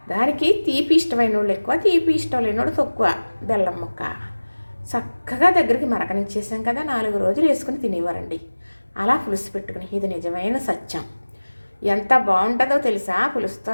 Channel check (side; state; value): both; inverted; correlation -1.00